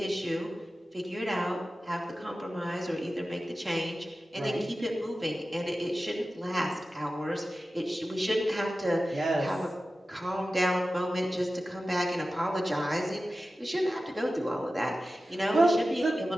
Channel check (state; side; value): normal; both; correlation 0.95